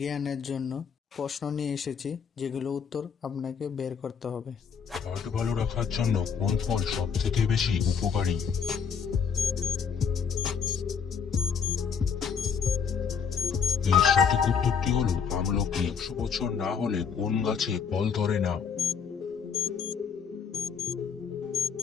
জন্য প্রশ্ন নিয়ে এসেছি, যেগুলো উত্তর আপনাকে বের করতে হবে। হার্ট ভালো রাখার জন্য কোন ফল সব থেকে বেশি উপকারী? এর সঠিক উত্তরটি হলো আমলকি। 100 বছর না হলে কোন গাছে ফল ধরে না?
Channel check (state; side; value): quieter; right; 6.6 dB